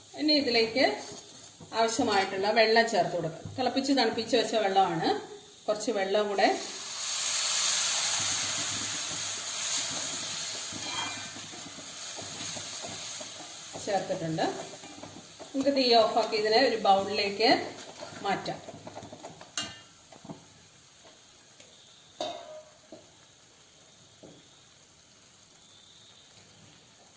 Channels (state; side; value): identical; both; correlation 1.00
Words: ഇനി ഇതിലേക്ക് ആവശ്യമായിട്ടുള്ള വെള്ളം ചേർത്ത് കൊടുക്കുക. തിളപ്പിച്ച് തണുപ്പിച്ച് വെച്ച വെള്ളമാണ്. കുറച്ച് വെള്ളം കൂടെ ചേർത്തിട്ടുണ്ട്. നമുക്ക് തീ ഓഫാക്കി ഇതിനെ ഒരു ബൗളിലേക്ക് മാറ്റാം.